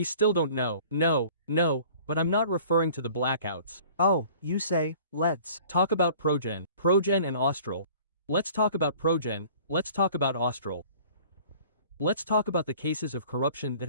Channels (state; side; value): inverted; both; correlation -0.49